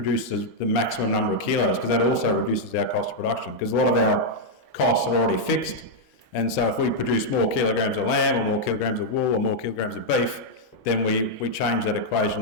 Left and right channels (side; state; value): both; normal; correlation -0.03